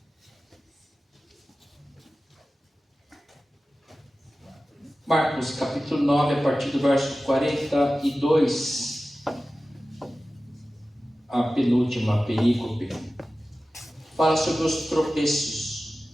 Marcos capítulo 9, a partir do verso 42, a penúltima perícope, fala sobre os tropeços.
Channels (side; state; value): both; normal; correlation 0.95